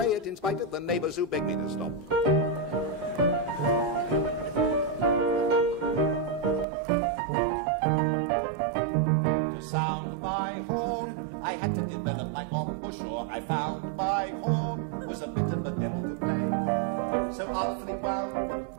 it in spite of the neighbors who begged me to stop. To sound my horn, I had to develop my embouchure. I found my horn was a bit of a devil to play, so artfully wound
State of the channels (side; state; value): left; drops out; at 6.7 s